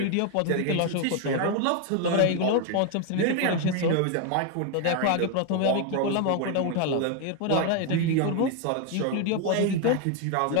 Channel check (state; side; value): different; both; correlation 0.01